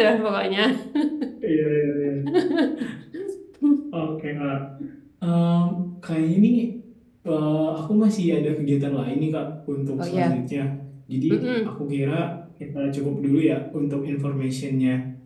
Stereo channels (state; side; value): identical; both; correlation 1.00